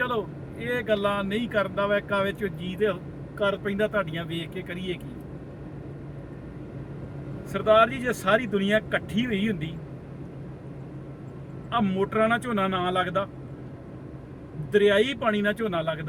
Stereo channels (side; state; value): both; identical; correlation 1.00